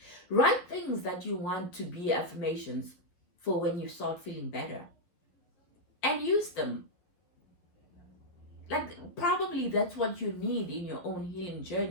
write things that you want to be affirmations for when you start feeling better. And use them. Like, probably that's what you need in your own healing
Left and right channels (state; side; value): late; right; 11 ms